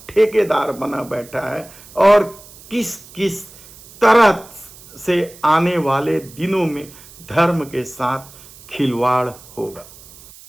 ठेकेदार बना बैठा है और किस किस तरह से आने वाले दिनों में धर्म के साथ खिलवाड़ होगा।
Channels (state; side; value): noise; right; hiss, 21 dB below the sound